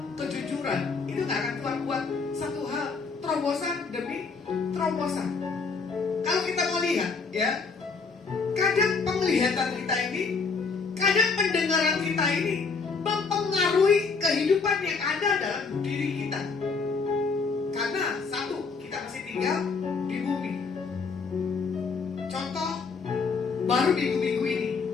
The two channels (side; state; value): right; quieter; 4.8 dB